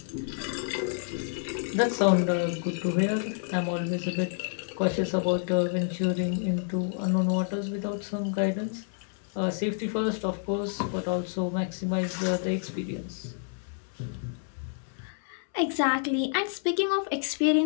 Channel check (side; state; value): right; silent; 59 dB below the other